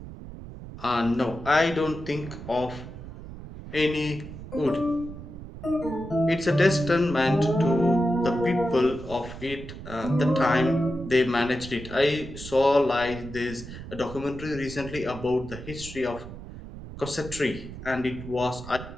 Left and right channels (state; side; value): noise; right; rumble, 12 dB below the sound